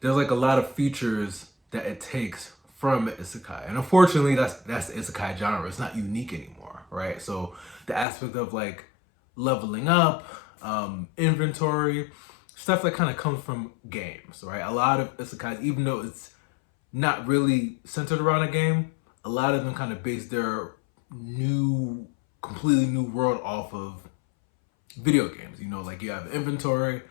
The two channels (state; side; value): drops out; right; at 8.1 s